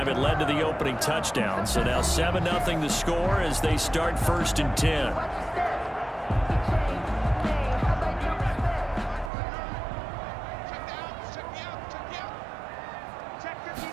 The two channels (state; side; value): drops out; left; at 9.3 s